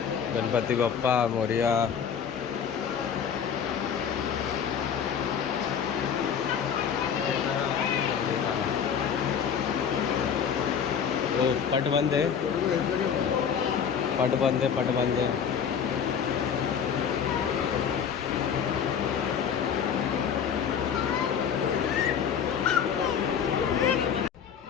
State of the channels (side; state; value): right; quieter; 7.5 dB